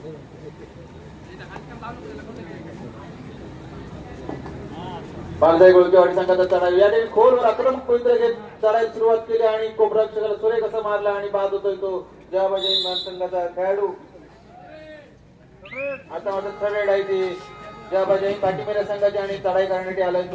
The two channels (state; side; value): identical; both; correlation 1.00